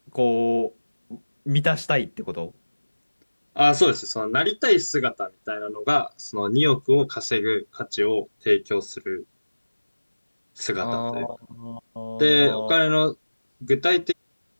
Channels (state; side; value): inverted; both; correlation -1.00